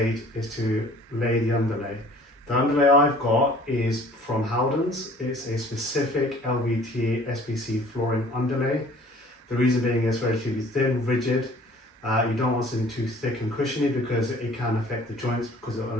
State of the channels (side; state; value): both; normal; correlation 0.51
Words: is to lay the underlay. The underlay I've got is from Howden's. It's a specific LVT SPC flooring underlay. The reason being is relatively thin, rigid. You don't want something too thick and cushiony because it can affect the joints because it will